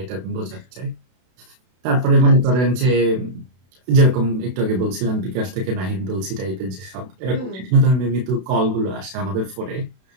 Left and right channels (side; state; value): left; late; 32 ms